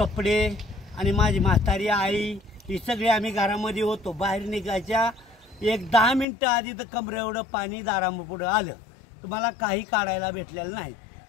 आणि माझी म्हातारी आई ही सगळी आम्ही घरामध्ये होतो। बाहेर निघायच्या एक 10 मिनिटं आधी तर कमरे एवढं पाणी दारापुढे आलं, तुम्हाला काही काढायला भेटलेलं नाही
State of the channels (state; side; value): drops out; right; at 6.2 s